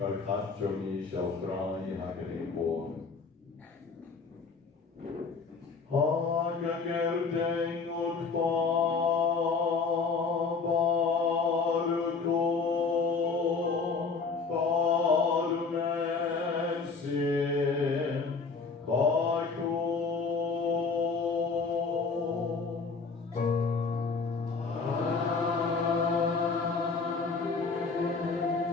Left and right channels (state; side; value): quieter; right; 4.6 dB